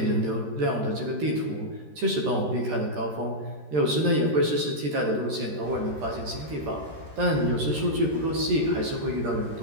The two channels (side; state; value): left; late; 13 ms